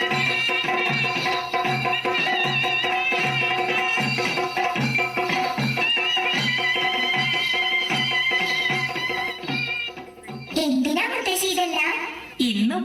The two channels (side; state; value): both; identical; correlation 1.00